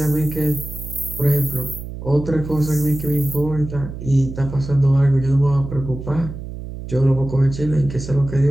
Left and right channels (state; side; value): noise; right; hum, 10 dB below the sound